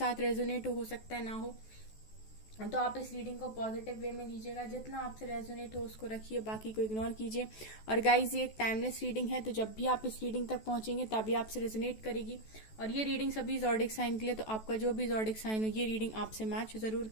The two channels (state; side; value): late; right; 14 ms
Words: रेजोनेट हो सकता है ना हो, तो आप इस रीडिंग को पॉजिटिव वे में लीजिएगा। जितना आपसे रेजोनेट हो उसको रखिए, बाकी को इग्नोर कीजिए। और गाइज, ये एक टाइमलेस रीडिंग है, तो जब भी आप इस रीडिंग तक पहुंचेंगे तभी आपसे रेजोनेट करेगी। और ये रीडिंग सभी ज़ोडिक साइन के लिए, तो आपका जो भी ज़ोडिक साइन हो ये रीडिंग आपसे मैच जरूर